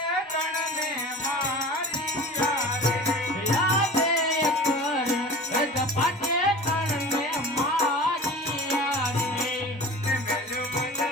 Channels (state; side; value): normal; both; correlation 0.37